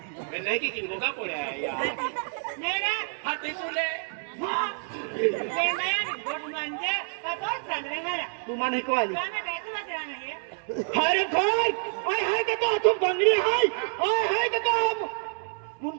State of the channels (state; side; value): silent; left; digital silence